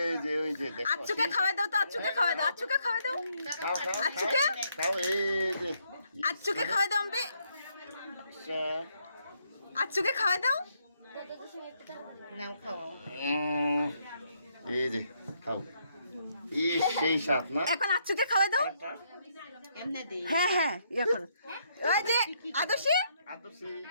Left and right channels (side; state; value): both; inverted; correlation -0.74